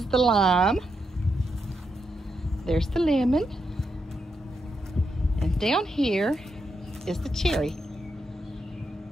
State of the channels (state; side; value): normal; both; correlation 0.82